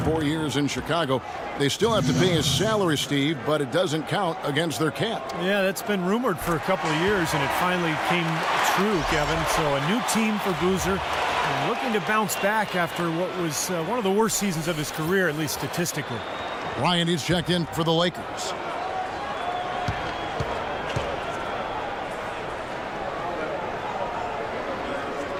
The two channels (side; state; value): both; identical; correlation 1.00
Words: years in Chicago. They still have to pay his salary, Steve, but it doesn't count against their cap. Yeah, that's been rumored for a couple of years, and it finally came true, Kevin. So a new team for Boozer, and looking to bounce back after what was one of the worst seasons of his career, at least statistically. Ryan, he's checked in for the Lakers.